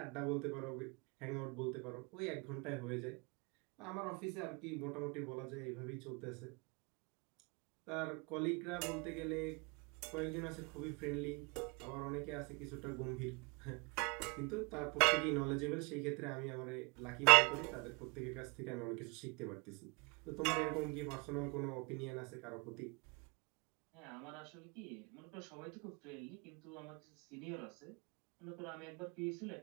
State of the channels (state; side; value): quieter; left; 30.6 dB